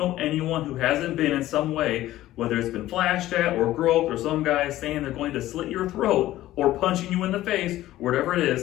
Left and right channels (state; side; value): quieter; right; 15.1 dB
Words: anyone who hasn't been in some way, whether it's been flashed at or groped or some guy saying they're going to slit your throat or punching you in the face, whatever it